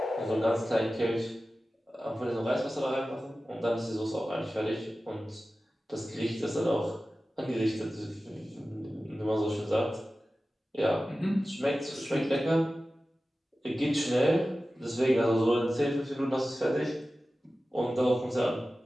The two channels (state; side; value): normal; both; correlation 0.95